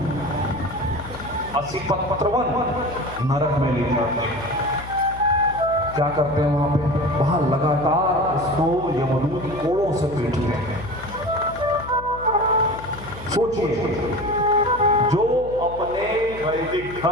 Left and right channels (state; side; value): noise; left; hum, 14 dB below the sound